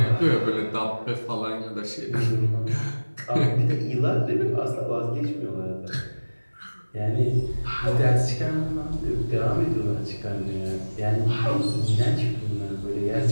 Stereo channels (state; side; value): inverted; both; correlation -1.00